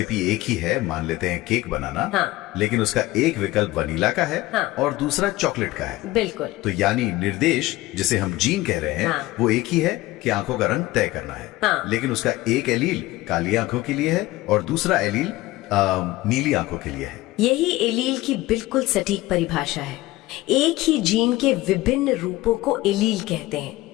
एक ही है, मान लेते हैं केक बनाना, हाँ। लेकिन उसका एक विकल्प वनीला का है, हाँ। और दूसरा चॉकलेट का है। बिल्कुल। तो यानी निर्देश जिसे हम जीन कह रहे हैं, हाँ। वो एक ही है कि आंखों का रंग तय करना है। हाँ। लेकिन उसका एक एलील काली आंखों के लिए है और दूसरा एलील नीली आंखों के लिए है। यही एलील की बिल्कुल सटीक परिभाषा है। एक ही जीन के विभिन्न रूपों को एलील कहते हैं।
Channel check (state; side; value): quieter; right; 18.2 dB